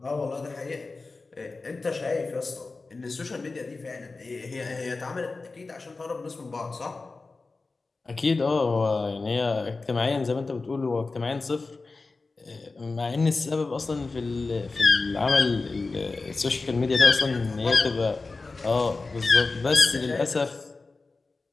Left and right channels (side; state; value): right; quieter; 3.8 dB